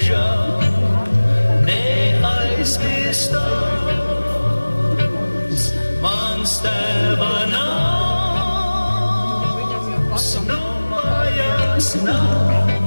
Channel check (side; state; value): both; inverted; correlation -1.00